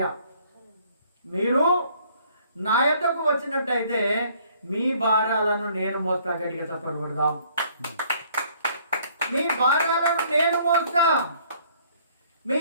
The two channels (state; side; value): inverted; both; correlation -0.61